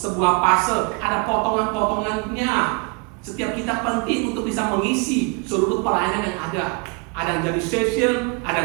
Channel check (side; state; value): left; quieter; 30.7 dB